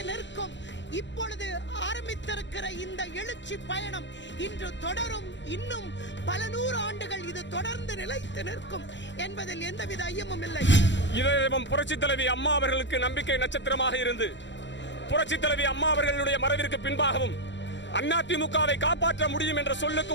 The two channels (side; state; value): right; late; 0.53 ms